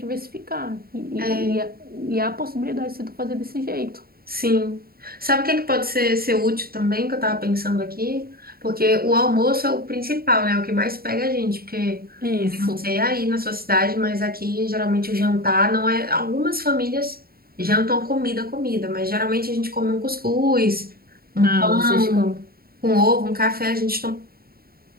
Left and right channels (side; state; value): left; late; 0.44 ms